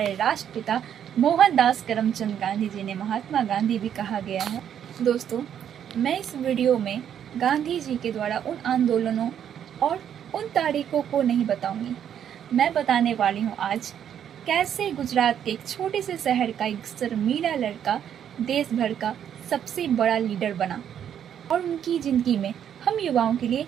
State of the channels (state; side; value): quieter; left; 9.3 dB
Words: राष्ट्रपिता मोहनदास करमचंद गांधी जी ने महात्मा गांधी भी कहा गया है। दोस्तों, मैं इस वीडियो में गांधी जी के द्वारा उन आंदोलनों और उन तारीखों को नहीं बताऊंगी। मैं बताने वाली हूँ आज कैसे गुजरात के एक छोटे से शहर का एक शर्मीला लड़का देश भर का सबसे बड़ा लीडर बना और उनकी जिंदगी में हम युवाओं के लिए